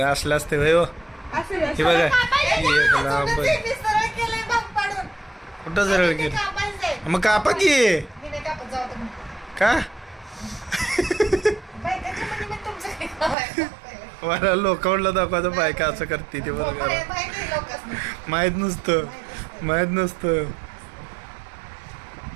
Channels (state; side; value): drops out; left; at 13.4 s